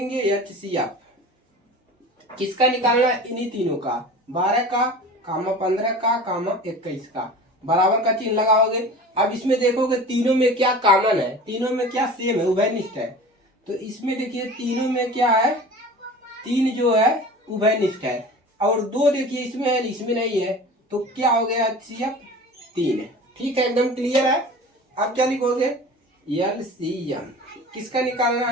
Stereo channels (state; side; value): normal; both; correlation 0.38